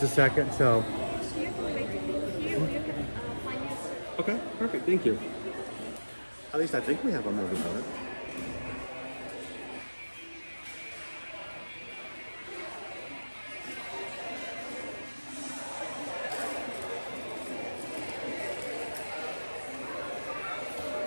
a second, so. Okay, perfect, thank you. At least I think we have a mobile order.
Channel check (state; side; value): inverted; both; correlation -1.00